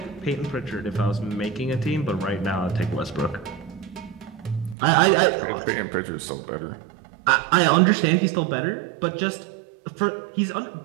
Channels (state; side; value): drops out; left; at 4.8 s